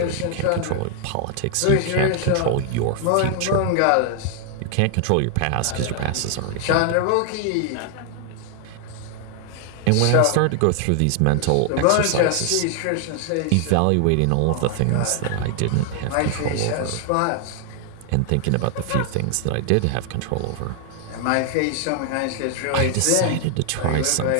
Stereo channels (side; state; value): both; different; correlation 0.00